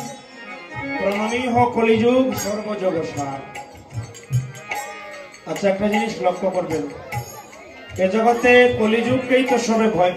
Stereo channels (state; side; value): identical; both; correlation 1.00